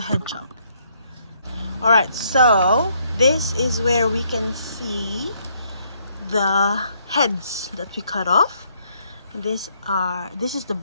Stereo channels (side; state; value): both; inverted; correlation -0.70